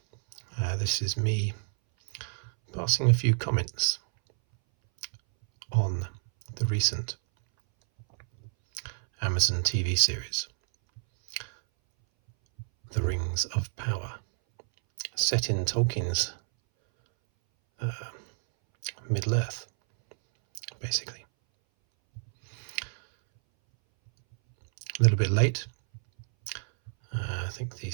this is me passing a few comments on the recent Amazon TV series, The Rings of Power, set in Tolkien's Middle-earth, basically. A little bit late. I think the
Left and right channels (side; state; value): left; silent; 59 dB below the other